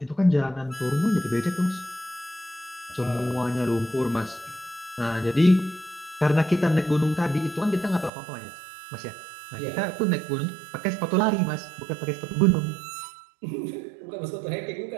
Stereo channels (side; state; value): left; drops out; at 8.1 s